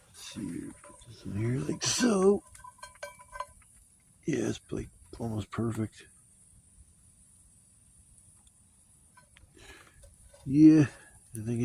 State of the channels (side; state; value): both; identical; correlation 1.00